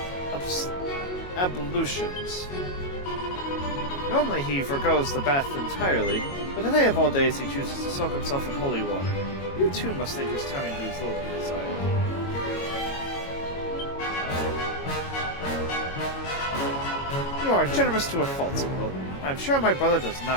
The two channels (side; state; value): right; late; 22 ms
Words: ablutions. Normally he forgoes the bath entirely, but today of all days he chooses to soak himself in holy water. You too must think his timing leaves little to be desired. You are generous to a fault, Squirrel. I am sure my brother does